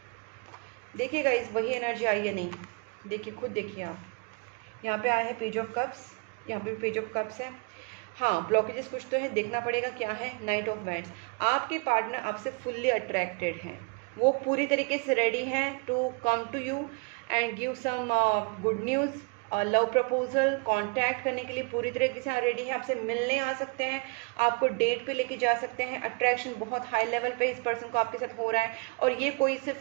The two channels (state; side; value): quieter; left; 32.8 dB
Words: देखिए गाइस, वही एनर्जी आई है नहीं, देखिए खुद देखिए आप। यहाँ पे आया है पेज ऑफ कप्स, यहाँ पे पेज ऑफ कप्स है। हाँ, ब्लॉकेजेस कुछ तो है, देखना पड़ेगा क्या है। नाइट ऑफ वैंड्स, आपके पार्टनर आपसे फुल्ली अट्रैक्टेड हैं, वो पूरी तरीके से रेडी हैं to come to you and give some good news, love proposal, contact करने के लिए पूरी तरीके से रेडी है, आपसे मिलने आ सकते हैं, आपको डेट पे लेके जा सकते हैं। अट्रैक्शन बहुत हाई लेवल पे इस पर्सन को आपके साथ हो रहा है, और ये कोई सिर्फ